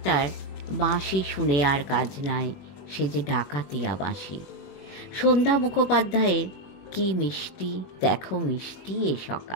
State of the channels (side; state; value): right; late; 21 ms